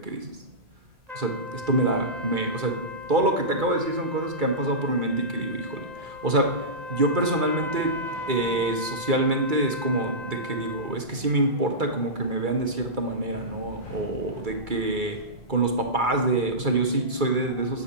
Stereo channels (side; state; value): left; late; 2.3 ms